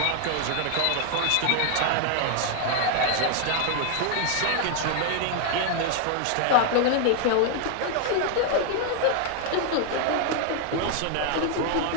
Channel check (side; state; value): both; different; correlation 0.00